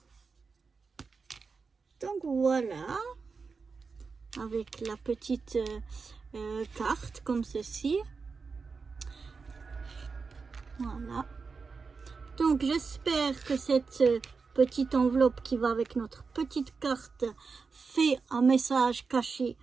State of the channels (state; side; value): quieter; left; 4.8 dB